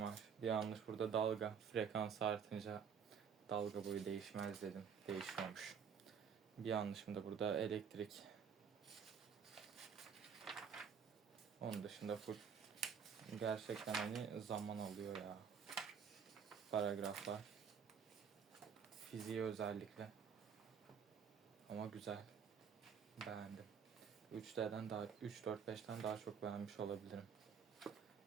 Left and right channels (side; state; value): left; quieter; 7.0 dB